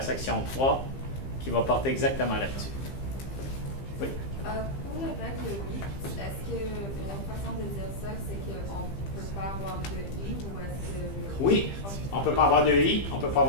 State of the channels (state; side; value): late; right; 15 ms